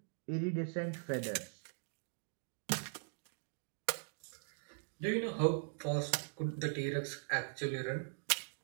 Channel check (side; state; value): left; silent; digital silence